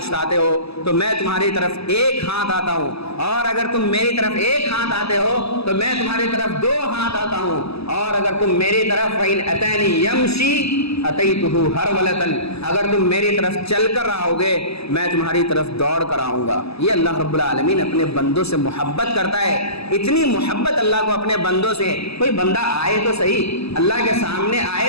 آتے ہو تو میں تمہاری طرف ایک ہاتھ آتا ہوں، اور اگر تم میری طرف ایک ہاتھ آتے ہو تو میں تمہاری طرف دو ہاتھ آتا ہوں، اور اگر تم میری طرف فَإِنْ أَتَانِي يَمْشِي أَتَيْتُهُ هَرْوَلَةً، اگر تم میری طرف چل کر آؤ گے میں تمہاری طرف دوڑ کر آؤں گا۔ یہ اللہ رب العالمین اپنے بندوں سے محبت کرتا ہے۔ اتنی محبت اللہ کو اپنے بندوں سے، کوئی بندہ آئے تو صحیح، اللہ کے سامنے آئے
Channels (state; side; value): late; right; 0.78 ms